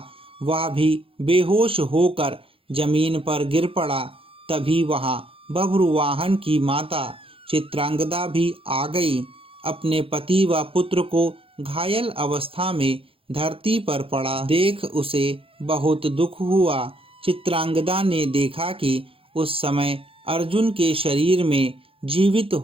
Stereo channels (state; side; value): late; left; 0.27 ms